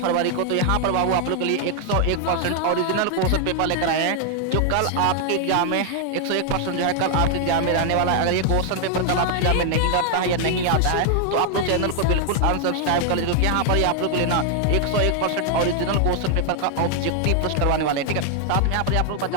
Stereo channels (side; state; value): both; different; correlation 0.00